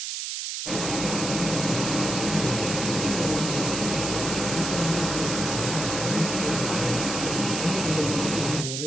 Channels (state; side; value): noise; right; hiss, 4 dB below the sound